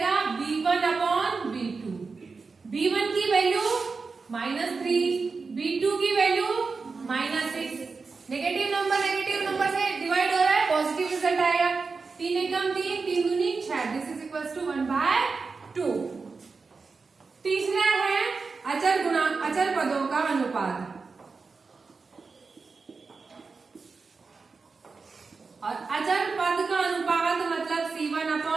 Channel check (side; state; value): left; quieter; 4.5 dB